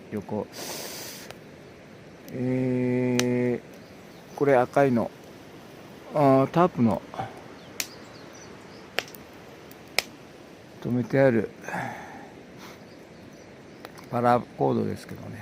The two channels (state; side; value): identical; both; correlation 1.00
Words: 横、これ赤いのタープの止めてあるパラコードですけどね、